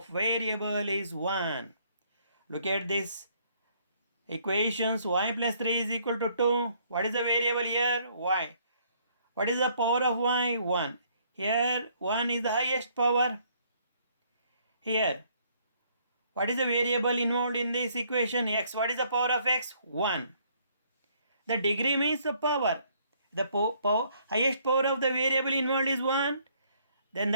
variable is 1. Look at this equations. Y plus 3 is equal to 2. What is the variable here? Y. What is the power of y? 1. Here 1 is the highest power. Here, what is the variable involved in this equation? X. What is the power of x? 1. The degree means the power. The highest power of the variable involved is 1. Then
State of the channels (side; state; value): both; inverted; correlation -0.65